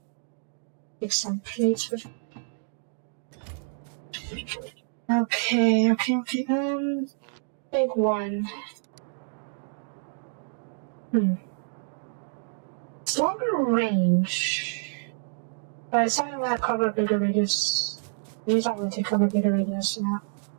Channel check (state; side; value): silent; left; digital silence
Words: Take some plates with. Okay. Big one. It's longer range. But it's not going to cover a bigger radius. These aren't going to cover a bigger radius now.